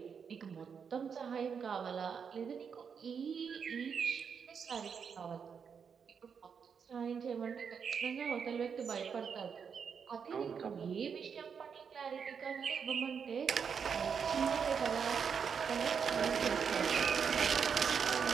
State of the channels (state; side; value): quieter; left; 6.6 dB